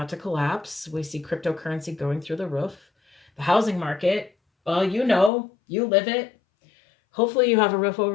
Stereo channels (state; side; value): drops out; right; at 5.3 s